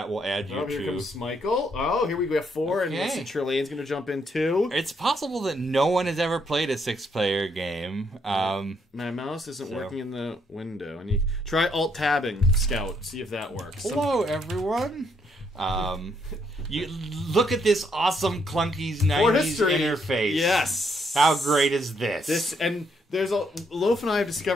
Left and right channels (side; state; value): both; normal; correlation 0.73